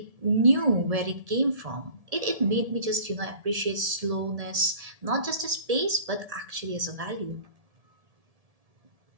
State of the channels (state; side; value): late; left; 1.7 ms